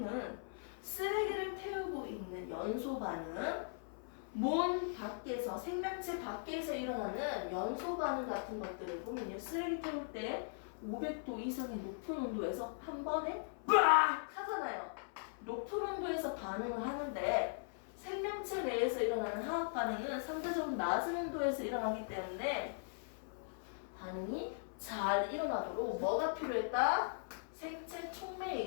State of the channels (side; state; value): right; silent; 51 dB below the other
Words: 쓰레기를 태우고 있는 연소 반응, 몸 밖에서, 생명체 밖에서 일어나는 연소 반응 같은 것들을 보면요, 쓰레기 태울 때 500도 이상의 높은 온도에서 한 번에 빡 하잖아요. 높은 온도에서 반응을 하는데 생명체 내에서 일어나는 화학 반응은 상대적으로 낮은 온도에서 일어나기 때문에 반응이 잘 일어나도록 뭐가 필요했다? 생체